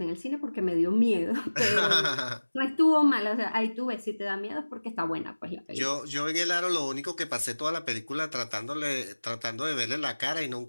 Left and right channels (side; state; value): both; inverted; correlation -1.00